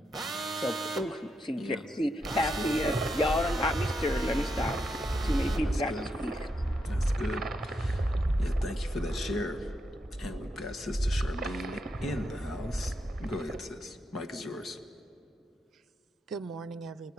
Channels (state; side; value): normal; both; correlation 0.83